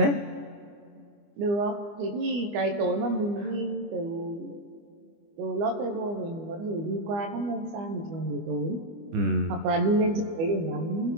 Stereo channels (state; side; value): late; left; 24 ms